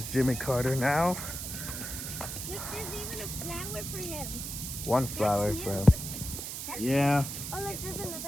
Jimmy Carter now. Look, there's even a flower for him. One flower for him. Yeah. Oh, look, there's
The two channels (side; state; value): right; noise; hiss, 6 dB below the sound